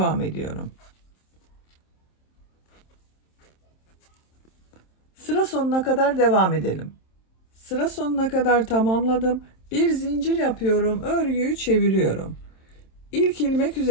ediyorum. Sıra sonuna kadar devam edelim. Sıra sonuna kadar tamamladım. Bir zincir yapıyorum, örgüyü çeviriyorum. İlk ilmek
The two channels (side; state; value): right; late; 27 ms